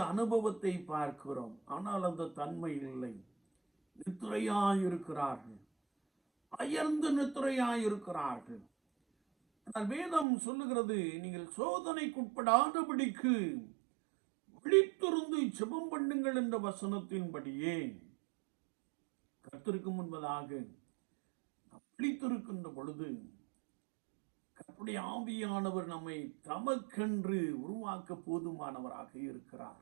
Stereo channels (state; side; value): drops out; left; at 10.2 s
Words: அனுபவத்தை பார்க்கிறோம். ஆனால் அந்த தன்மை இல்லை. நித்திரையாயிருக்கிறார்கள், அயர்ந்து நித்திரையாயிருக்கிறார்கள். ஆனால் வேதம் சொல்லுகிறது, நீங்கள் சோதனைக்குட்படாதபடிக்கு விழித்திருந்து ஜெபம் பண்ணுங்கள் என்ற வசனத்தின்படியே கர்த்தருக்கு முன்பதாக நாம் விழித்திருக்கின்ற பொழுது கர்த்தருடைய ஆவியானவர் நம்மை தமக்கென்று உருவாக்க போதுமானவராக